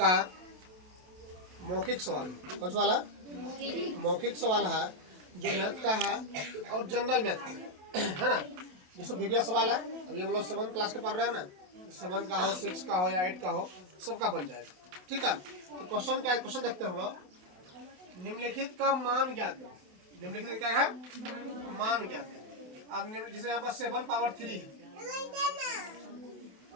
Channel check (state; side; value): late; left; 27 ms